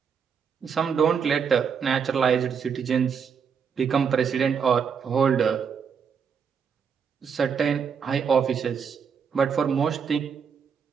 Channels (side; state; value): left; quieter; 6.7 dB